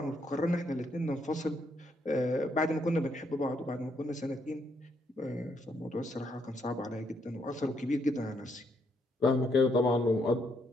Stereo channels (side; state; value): both; normal; correlation 0.74